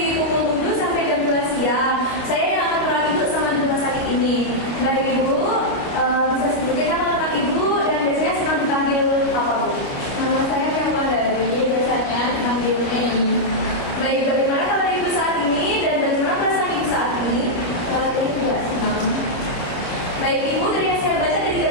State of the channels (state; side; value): late; right; 29 ms